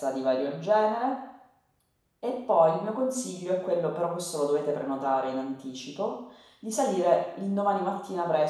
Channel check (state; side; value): identical; both; correlation 1.00